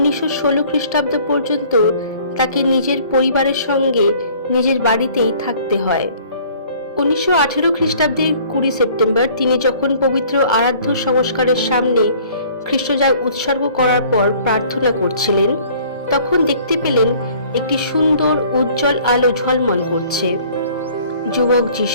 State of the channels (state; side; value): inverted; both; correlation -0.54